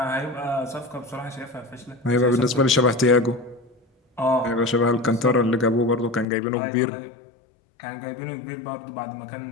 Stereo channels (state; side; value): drops out; right; at 6.2 s